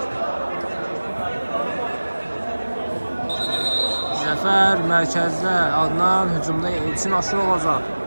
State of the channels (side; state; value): both; inverted; correlation -1.00